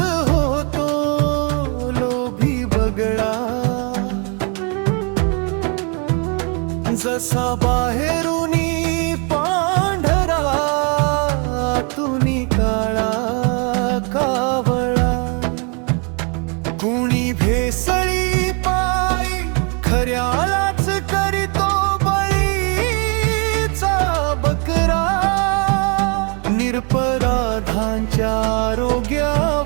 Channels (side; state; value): left; quieter; 35.0 dB